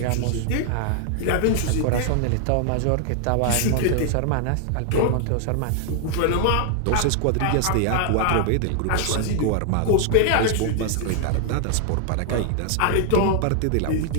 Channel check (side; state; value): both; different; correlation 0.00